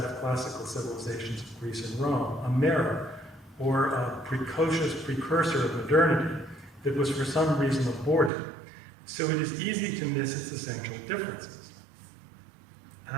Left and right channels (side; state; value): left; drops out; at 8.3 s